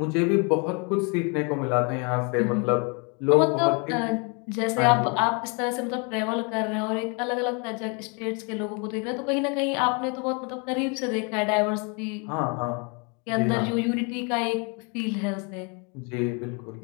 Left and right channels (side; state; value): right; quieter; 33.7 dB